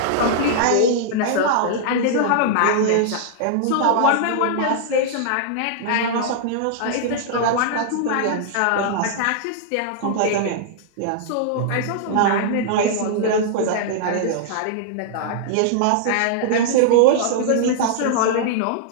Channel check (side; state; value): both; different; correlation -0.01